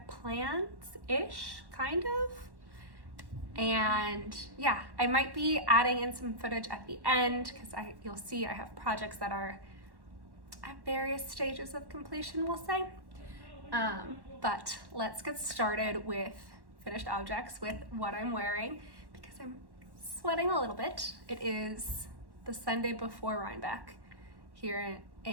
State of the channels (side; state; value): left; late; 1.1 ms